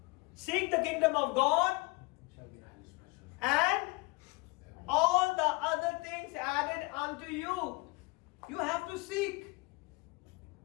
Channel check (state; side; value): quieter; right; 25.8 dB